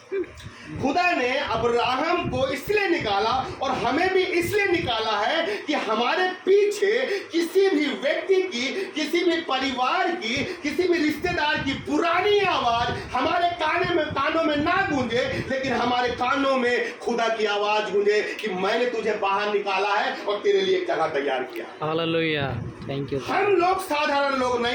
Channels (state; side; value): identical; both; correlation 1.00